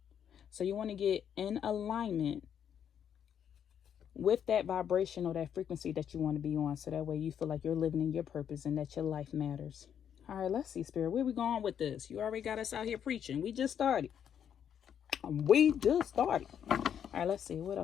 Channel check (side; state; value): right; quieter; 8.7 dB